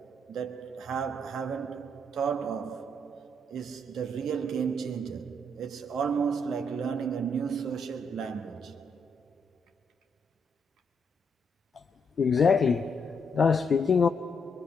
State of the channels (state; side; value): normal; both; correlation 0.75